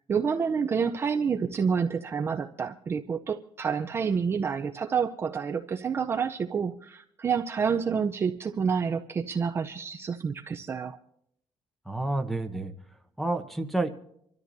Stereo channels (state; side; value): quieter; left; 5.4 dB